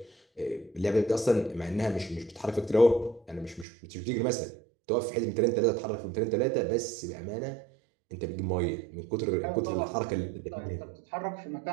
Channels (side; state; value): left; drops out; at 3.7 s